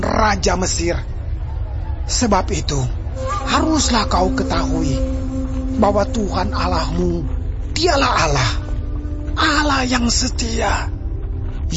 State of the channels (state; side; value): identical; both; correlation 1.00